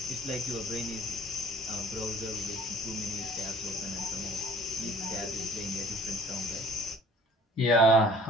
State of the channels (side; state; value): both; normal; correlation 0.52